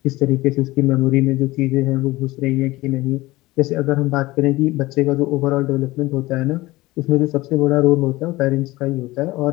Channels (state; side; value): quieter; right; 19.5 dB